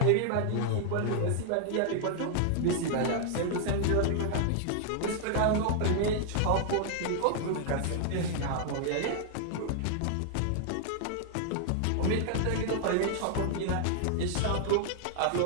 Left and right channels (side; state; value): both; different; correlation 0.00